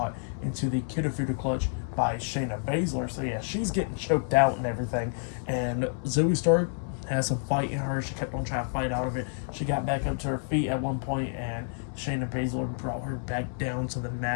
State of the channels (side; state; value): right; silent; 59 dB below the other